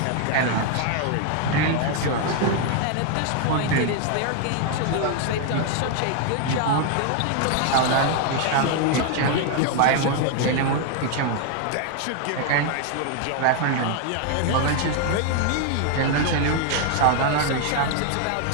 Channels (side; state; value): both; different; correlation 0.00